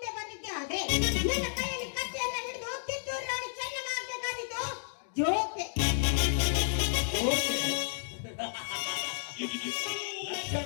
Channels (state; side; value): silent; right; digital silence